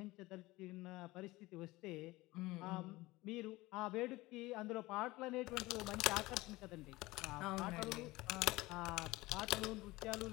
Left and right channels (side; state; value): right; quieter; 20.0 dB